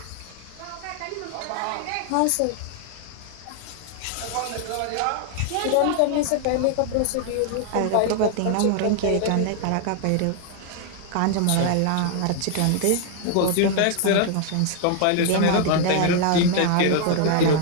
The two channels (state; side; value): different; both; correlation 0.00